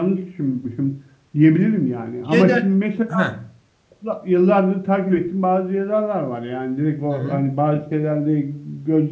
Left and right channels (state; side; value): identical; both; correlation 1.00